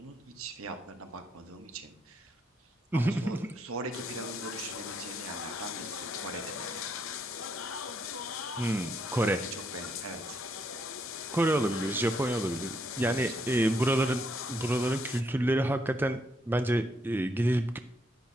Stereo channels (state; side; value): normal; both; correlation 0.74